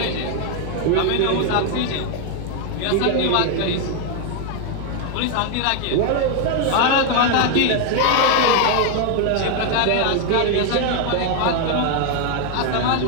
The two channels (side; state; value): both; different; correlation 0.01